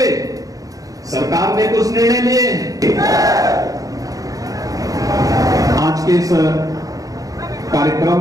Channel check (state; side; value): late; left; 0.17 ms